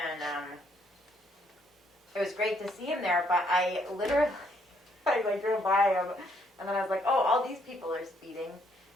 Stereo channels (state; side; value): normal; both; correlation 0.70